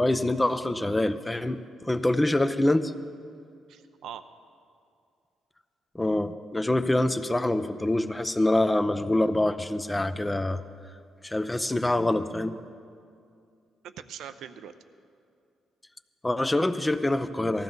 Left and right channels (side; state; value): both; normal; correlation 0.97